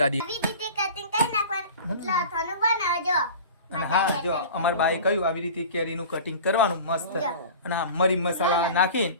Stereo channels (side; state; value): both; inverted; correlation -0.38